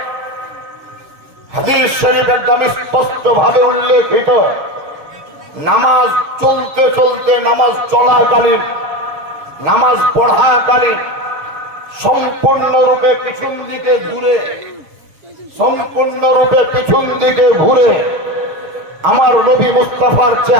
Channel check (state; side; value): late; left; 6.8 ms